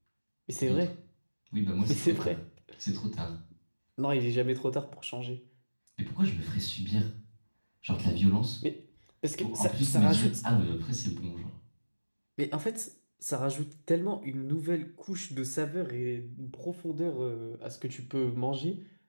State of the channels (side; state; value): both; inverted; correlation -1.00